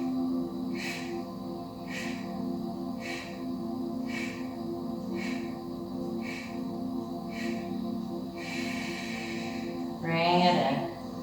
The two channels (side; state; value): left; noise; hum, 24 dB below the sound